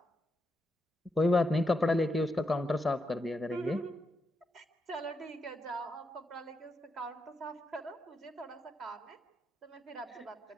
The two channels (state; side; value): normal; both; correlation 0.84